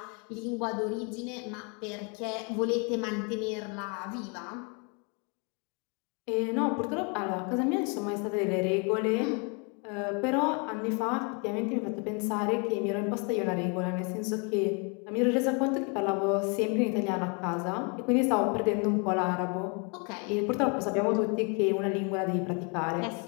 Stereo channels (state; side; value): quieter; right; 34.8 dB